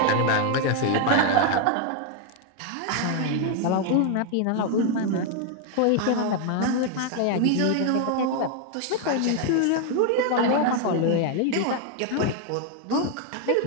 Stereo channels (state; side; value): different; both; correlation 0.00